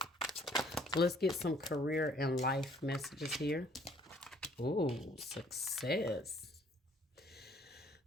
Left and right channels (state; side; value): normal; both; correlation 0.61